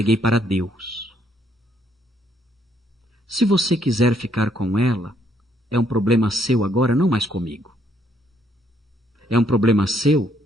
para Deus. Se você quiser ficar com ela, é um problema seu agora, não mais comigo. É um problema seu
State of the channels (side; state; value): both; normal; correlation 0.70